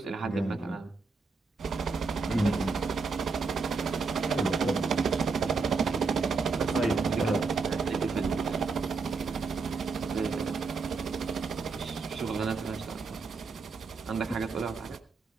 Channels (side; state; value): left; quieter; 4.5 dB